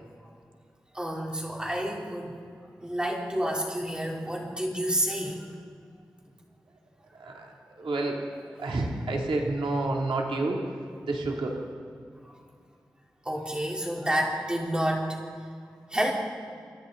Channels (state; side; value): normal; both; correlation 0.77